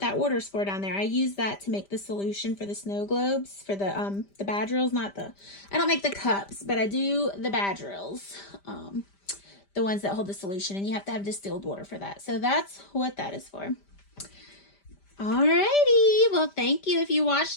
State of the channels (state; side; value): late; right; 5.1 ms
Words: order's for down there, I use that to make the solution for the snow globes, for the badgerils, I don't make the cups, but I do the badgerils, the ones that hold the solution, and you have to have distilled water for that. So that's what that is for. Alrighty, well, thank you if you